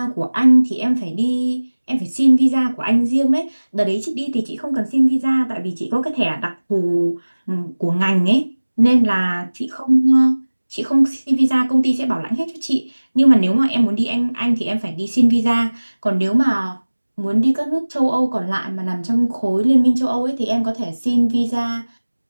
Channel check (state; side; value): inverted; both; correlation -1.00